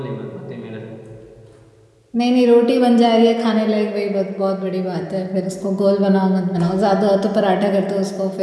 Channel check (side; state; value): both; identical; correlation 1.00